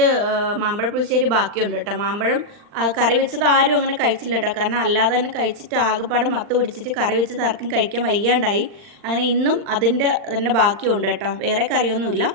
മാമ്പഴ പുളിശ്ശേരി ബാക്കിയുണ്ട് കേട്ടോ. മാമ്പഴം കറി വെച്ചത് ആരും അങ്ങനെ കഴിച്ചില്ല കേട്ടോ. കാരണം അല്ലാതെ തന്നെ കഴിച്ചിട്ട് ആകെപ്പാടെ മത്ത് പിടിച്ചിട്ട് കറി വെച്ചത് ആർക്കും കഴിക്കാൻ വയ്യാണ്ടായി. അങ്ങനെ ഇന്നും അതിൻ്റെ തന്നെ ബാക്കിയുണ്ട് കേട്ടോ, വേറെ കറിയൊന്നുമില്ല.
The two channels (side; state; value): left; late; 39 ms